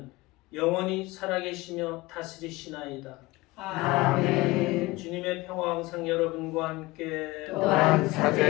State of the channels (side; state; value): right; quieter; 20.7 dB